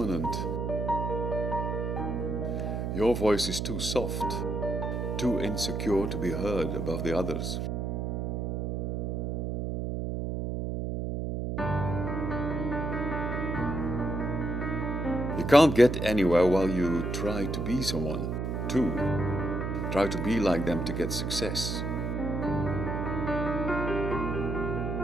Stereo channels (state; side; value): noise; right; hum, 2 dB below the sound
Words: Your voice is too soft, too insecure to be heard above the others. You can't get anywhere while you try to be someone, too. Try to be like them to get success.